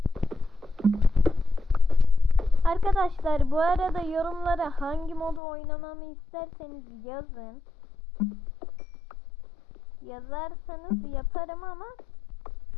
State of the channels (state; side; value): drops out; right; at 5.4 s